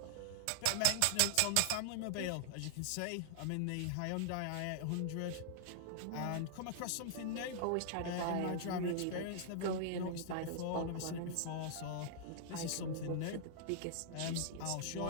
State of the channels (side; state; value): both; different; correlation -0.01